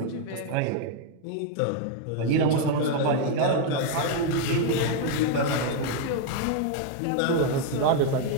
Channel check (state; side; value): different; both; correlation 0.00